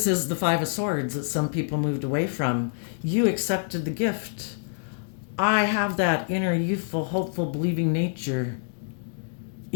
is the Five of Swords that some people moved away from. You accepted the gift. I have that inner, youthful, hopeful, believing nature.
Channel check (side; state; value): right; silent; digital silence